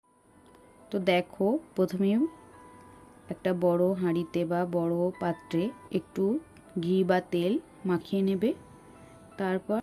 তো দেখো, প্রথমে একটা বড় হাঁড়িতে বা বড় পাত্রে একটু ঘি বা তেল মাখিয়ে নেবে। তারপর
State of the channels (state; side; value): identical; both; correlation 1.00